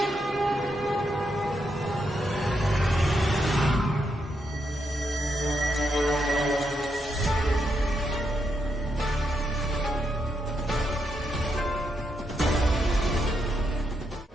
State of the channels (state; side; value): normal; both; correlation 0.81